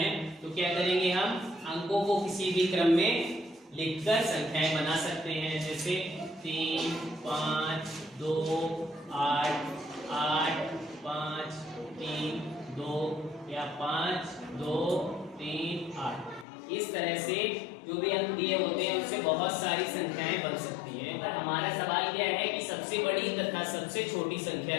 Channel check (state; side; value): drops out; right; at 16.4 s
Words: तो क्या करेंगे, हम अंकों को किसी भी क्रम में लिखकर संख्याएं बना सकते हैं। जैसे 3, 5, 2, 8, 8, 5, 3, 2 या 5, 2, 3, 8। इस तरह से जो भी अंक दिए होते हैं उससे बहुत सारी संख्याएं बन सकती हैं। पर हमारा सवाल क्या है कि सबसे बड़ी तथा सबसे छोटी संख्या